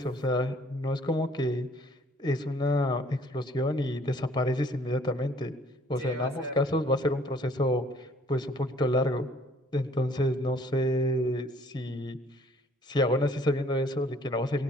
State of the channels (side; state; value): both; normal; correlation 0.59